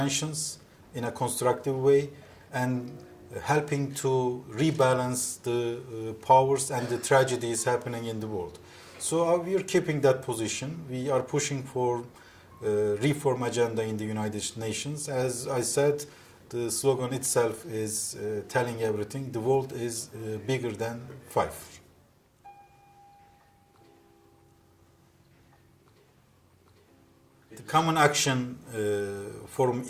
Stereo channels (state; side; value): identical; both; correlation 1.00